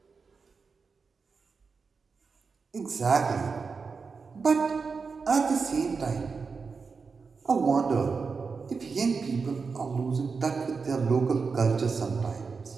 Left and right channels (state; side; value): quieter; left; 5.0 dB